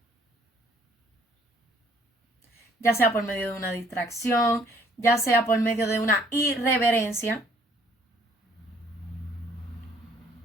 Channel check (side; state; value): both; normal; correlation 0.62